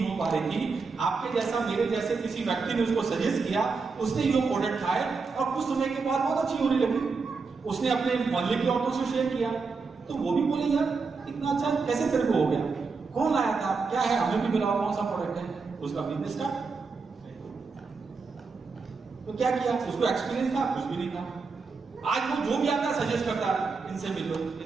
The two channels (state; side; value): quieter; left; 4.6 dB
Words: हो पा रही थी। आपके जैसा मेरे जैसे किसी व्यक्ति ने उसको सजेस्ट किया, उसने ये प्रोडक्ट खाए और कुछ समय के बाद बहुत अच्छी होने लगी। उसने अपने मोहल्ले की औरतों से शेयर किया, तो वो भी बोले यार इतना अच्छा कैसे तेरे को हो गया, कौन लाया था, क्या है, हमें भी मिला, कौन सा प्रोडक्ट है। उसका बिजनेस स्टार्ट। तो क्या किया, उसको एक्सपीरियंस था, कुछ भी नहीं था। आज वो जो भी आता है सजेस्ट करता है, इनसे मिलो,